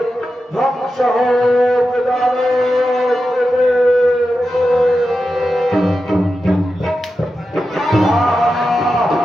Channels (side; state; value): both; normal; correlation 0.90